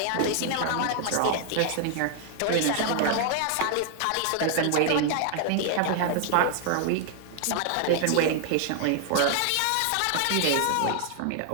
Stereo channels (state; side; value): different; both; correlation 0.00